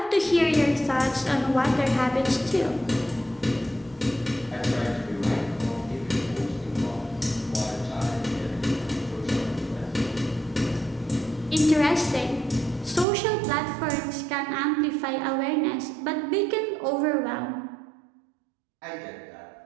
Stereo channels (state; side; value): drops out; left; at 13.1 s